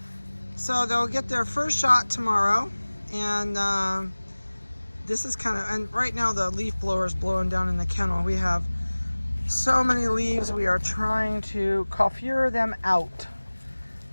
So they'll get their first shot tomorrow. And this is and right now the leaf blower is blowing down in the kennel. We have so many leaves, we are trying to coiffure them out.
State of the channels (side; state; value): both; inverted; correlation -1.00